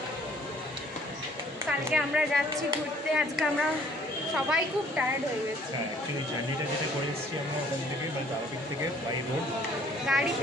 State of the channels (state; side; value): normal; both; correlation 0.58